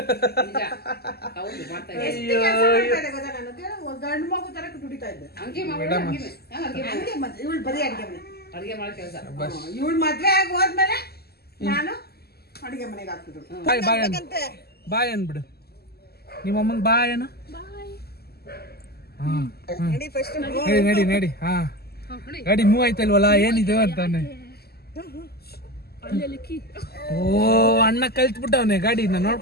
ಹೌದು ಮಾಡ್ತಾ ಗಂಡು ಮಗು ತರ ದುಡಿತಾ ಇದ್ದೆ. ಹಂಗೆ ಇವಳು ಬರೀ ಅಡಿಗೆ ಮನೆ ಅಡಿಗೆ ಮಾಡೋ ಕೆಲಸ. ಇವಳು ಮದ್ವೆ ಆಗಿ ಹೋದ್ಮೇಲೆ ನಾನು ಅಡಿಗೆ ಮನೆಗೆ ಹಾಕ್ತಿದ್ರು. ಬಾಯ್ ಅನ್ಬಿಡು ನಿಮ್ಮ ಅಮ್ಮಂಗ್ ಬಾಯ್ ಅನ್ನ. ನಡಿ ನಡಿ. ಹಾ ಗಾಡಿ ಮೂವ್ ಆಯ್ತಲ್ವಲ್ಲ, ಏನಿದೆ ಅಂತಾನೆ. ಓ ಅಣ್ಣ ಕಲ್ತ್ಬಿಟ್ಟವನೆ ಗಾಡಿನ,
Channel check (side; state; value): right; late; 0.46 ms